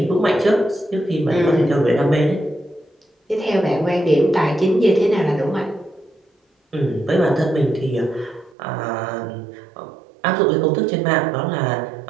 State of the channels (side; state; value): left; drops out; at 8.6 s